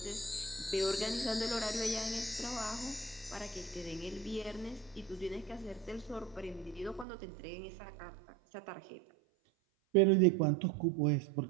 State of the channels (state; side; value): drops out; left; at 7.1 s